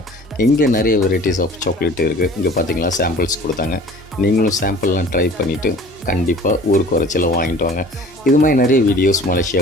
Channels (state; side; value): normal; both; correlation 0.47